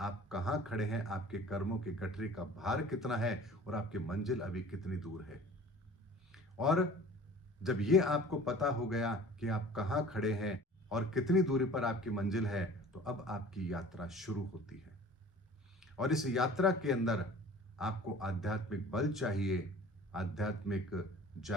कहां खड़े हैं, आपके कर्मों के गठरी का भार कितना है और आपकी मंजिल अभी कितनी दूर है। और जब ये आपको पता हो गया कि आप कहां खड़े हैं और कितनी दूरी पर आपकी मंजिल है, तो अब आपकी यात्रा शुरू होती है। और इस यात्रा के अंदर आपको आध्यात्मिक बल चाहिए, आध्यात्मिक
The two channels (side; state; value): both; normal; correlation 0.45